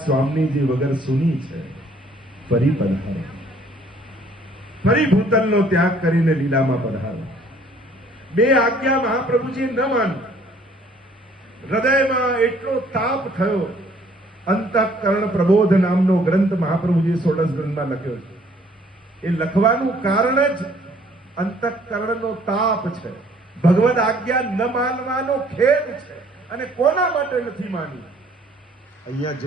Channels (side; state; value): both; normal; correlation 0.60